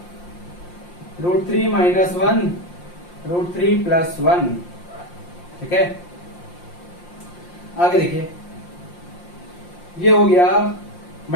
रूट 3 माइनस 1 रूट 3 प्लस 1, ठीक है। आगे देखिए, ये हो गया,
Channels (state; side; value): late; right; 5.7 ms